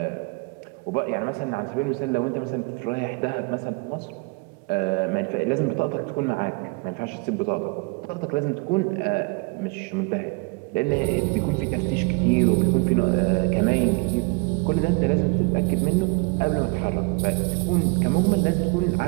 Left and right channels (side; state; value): left; quieter; 29.7 dB